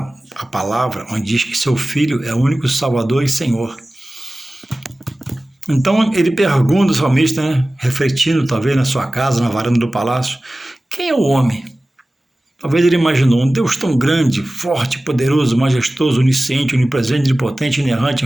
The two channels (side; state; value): both; normal; correlation 0.97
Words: a palavra, onde diz que seu Filho é o único Salvador e Senhor. Então ele pergunta ao salmista, né, refletindo talvez na sua casa, na varanda do palácio, quem é o homem? Talvez ele imaginou um Deus tão grande, forte, poderoso, majestoso, onisciente, onipresente, onipotente, inerrante,